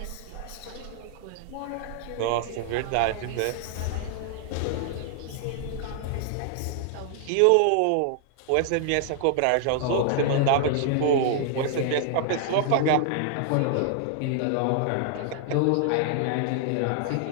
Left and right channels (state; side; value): different; both; correlation 0.00